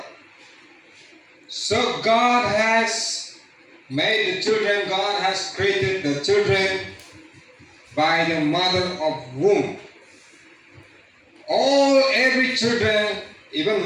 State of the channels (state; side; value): identical; both; correlation 1.00